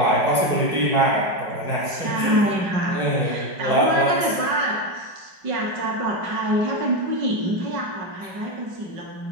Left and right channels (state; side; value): late; left; 5.2 ms